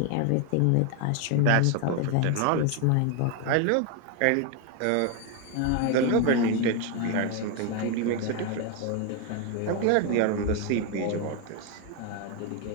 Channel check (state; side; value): different; both; correlation 0.01